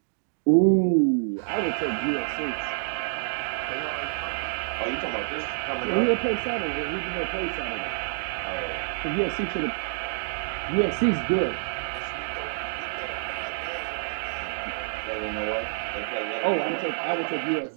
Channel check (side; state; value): left; silent; digital silence